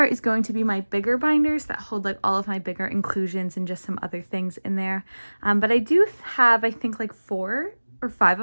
is going to be my bigger binders that hold like all of my bigger inclusions and just some other things in there. But I do have, I think, like 4 or 5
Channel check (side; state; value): both; inverted; correlation -1.00